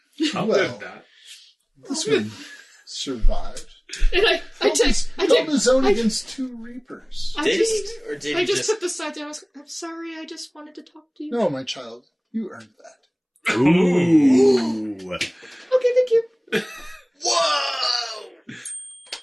Well, live that. this one survived. And I Held his own against 2 Reapers. Did he? Or did I he just put the side down. I'm sorry, I just wanted to talk to you. No, my child, you earned that. Ooh. Okay, thank you. Whoa!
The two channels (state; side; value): identical; both; correlation 1.00